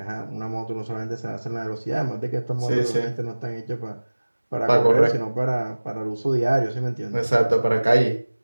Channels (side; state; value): both; inverted; correlation -1.00